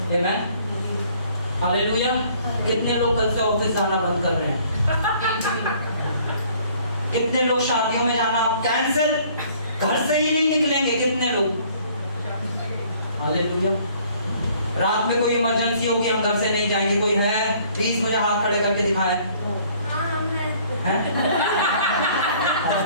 आमेन। हालेलुया। कितने लोग कल से ऑफिस जाना बंद कर रहे हैं, कितने लोग शादियों में जाना कैंसिल, घर से ही नहीं निकलेंगे, कितने लोग। हालेलुया। रात में कोई इमरजेंसी होगी, हम घर से नहीं जाएंगे, कोई है प्लीज मुझे हाथ खड़े करके दिखाएं।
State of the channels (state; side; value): inverted; both; correlation -0.58